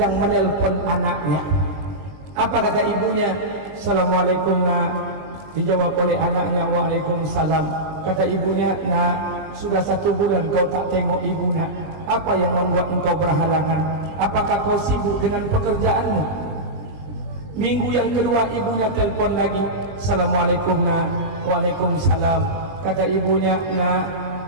menelpon anaknya. Apa kata ibunya? Assalamualaikum, nak. Dijawab oleh anaknya, waalaikumsalam. Kata ibunya, nak, sudah 1 bulan kau tak tengok ibu, nak. Apa yang membuat engkau berhalangan? Apakah kau sibuk dengan pekerjaanmu? Minggu yang kedua ibunya telpon lagi. Assalamualaikum, nak. Waalaikumsalam. Kata ibunya, nak,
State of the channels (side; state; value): left; late; 20 ms